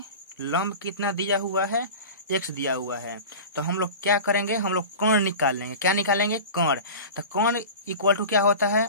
लंब कितना दिया हुआ है, एक्स दिया हुआ है। तो हम लोग क्या करेंगे, हम लोग कर्ण निकाल लेंगे। क्या निकालेंगे, कर्ण। तो कर्ण इक्वल टू क्या होता है,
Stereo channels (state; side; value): inverted; both; correlation -0.33